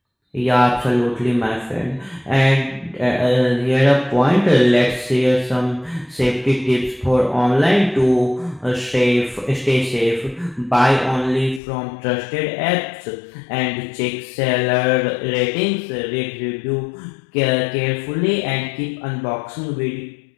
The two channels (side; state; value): right; drops out; at 11.6 s